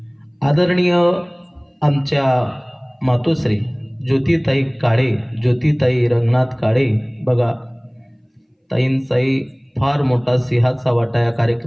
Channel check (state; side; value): identical; both; correlation 1.00